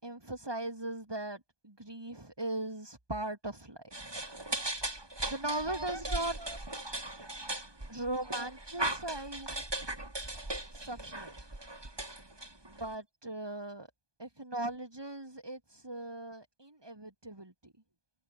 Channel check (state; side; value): late; left; 1.2 ms